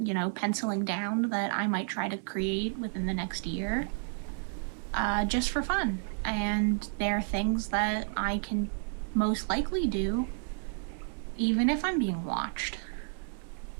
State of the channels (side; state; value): left; silent; 57 dB below the other